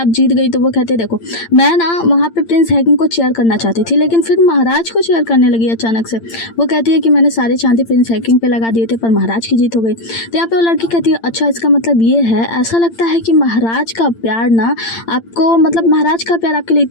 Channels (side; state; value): right; late; 8.8 ms